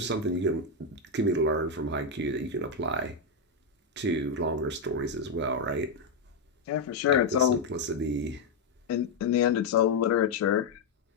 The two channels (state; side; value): quieter; right; 3.6 dB